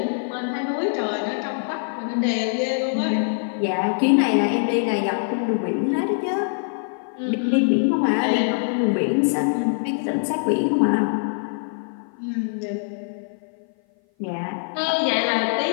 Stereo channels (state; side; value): silent; right; 57 dB below the other